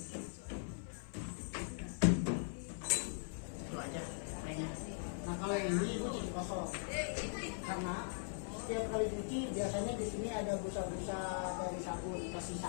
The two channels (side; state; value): right; silent; 51 dB below the other